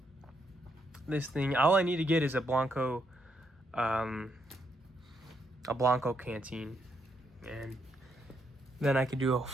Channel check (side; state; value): both; normal; correlation 0.77